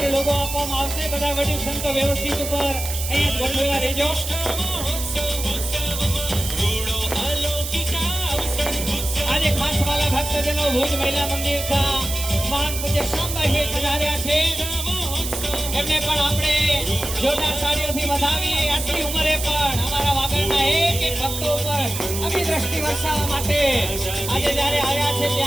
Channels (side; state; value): right; noise; hiss, 6 dB below the sound